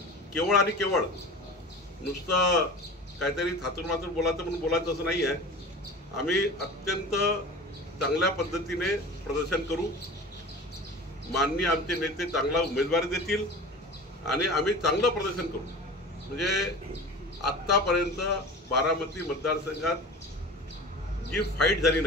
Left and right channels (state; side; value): normal; both; correlation 0.36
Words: केवळ आणि केवळ नुसतं काहीतरी थातूरमातूर बोलायचं म्हणून बोलायचं असं नाही आहे. आम्ही अत्यंत चांगल्या पद्धतीने प्रदर्शन करू. माननीय आमचे नेते चांगला उमेदवारी देतील आणि आम्ही चांगलं प्रदर्शन करू. म्हणजे आत्तापर्यंत बारामती मतदारसंघात जी फाईट झाली